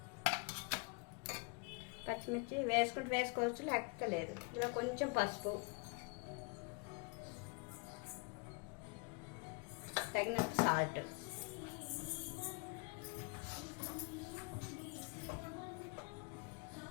వేసుకుంటూ వేసుకోవచ్చు, లేకపోతే లేదు. ఇందులో కొంచెం పసుపు, తగినంత సాల్ట్,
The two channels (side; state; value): right; quieter; 32.7 dB